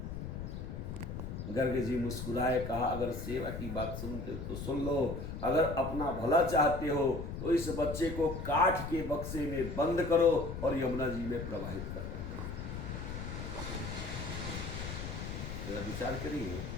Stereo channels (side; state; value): left; noise; rumble, 6 dB below the sound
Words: गर्ग जी मुस्कुराए, कहा अगर सेवा की बात सुनते तो सुन लो, अगर अपना भला चाहते हो तो इस बच्चे को काठ के बक्से में बंद करो और यमुना जी में प्रवाहित करो। तो विचार करिए,